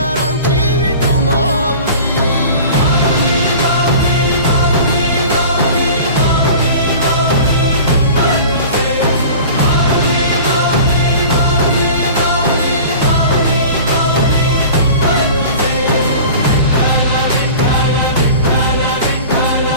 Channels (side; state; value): both; inverted; correlation -0.39